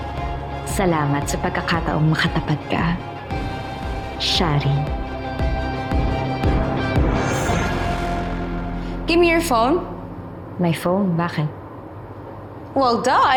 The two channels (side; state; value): both; identical; correlation 1.00